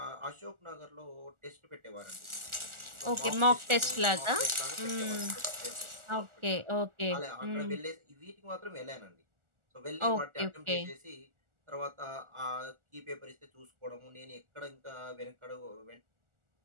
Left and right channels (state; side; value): late; left; 1.4 ms